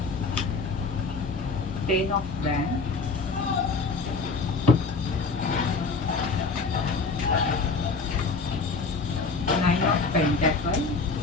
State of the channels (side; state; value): right; quieter; 4.3 dB